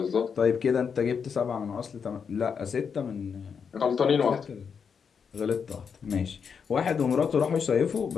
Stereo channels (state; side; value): quieter; right; 6.4 dB